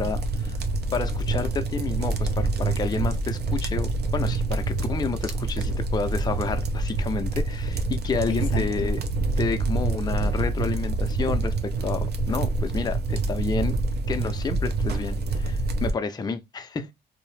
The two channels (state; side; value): normal; both; correlation 0.63